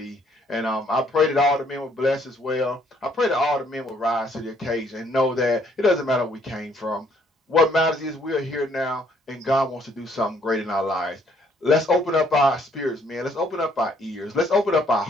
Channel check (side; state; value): both; normal; correlation 0.66